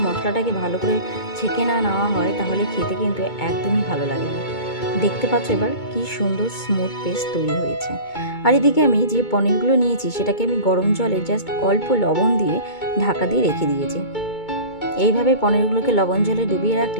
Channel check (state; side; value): late; right; 2.2 ms